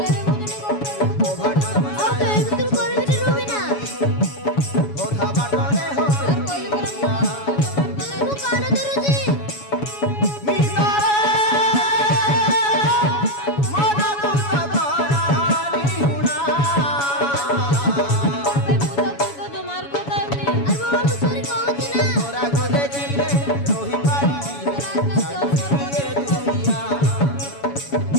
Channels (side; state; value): right; late; 7.1 ms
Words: মুজনে করতে ओ भाटर আর তো এমতুল করবি না রুবি না ओधा बाटरे हो আর কইলে পরে মু কানে ধরুছি মিতারে মনা তুতা করানি হুনা ভাই মুতা তো তোমার কথা এমনি আর বাবা মু সরি কইছি না তোরা গো দেখিলে রহি পারি এ দুনিয়া